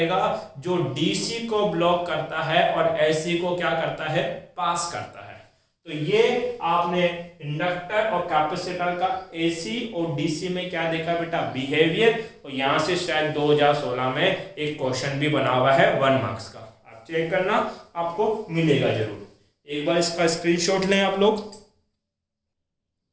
जो डीसी को ब्लॉक करता है और एसी को क्या करता है, पास करता है। तो ये आपने इंडक्टर और कैपेसिटर का एसी और डीसी में क्या देखा बेटा, बिहेवियर। और यहां से शायद 2016 में एक क्वेश्चन भी बना हुआ है 1 मार्क्स का, आप चेक करना, आपको मिलेगा जरूर। एक बार इसका स्क्रीनशॉट लें आप लोग।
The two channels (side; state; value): both; identical; correlation 1.00